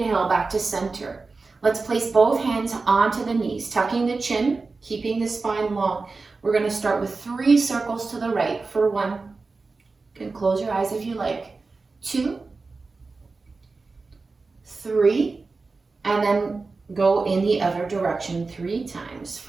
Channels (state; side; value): quieter; left; 4.0 dB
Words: back to center. Let's place both hands onto the knees, tucking the chin, keeping the spine long. We're going to start with 3 circles to the right for 1. You can close your eyes if you like. 2, 3, and then go in the other direction 3 times